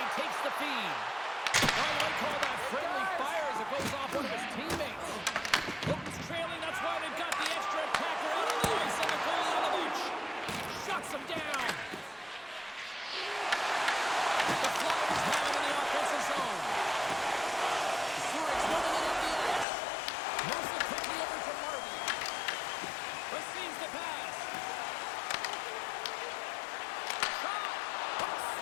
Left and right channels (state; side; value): drops out; right; at 19.7 s